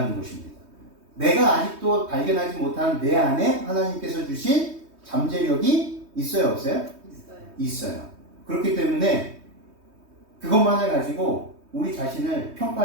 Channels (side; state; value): left; late; 3.2 ms